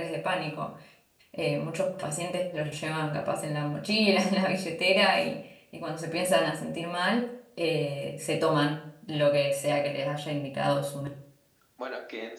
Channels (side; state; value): both; identical; correlation 1.00